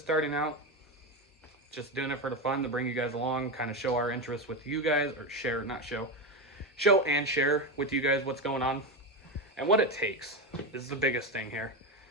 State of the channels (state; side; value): normal; both; correlation 0.15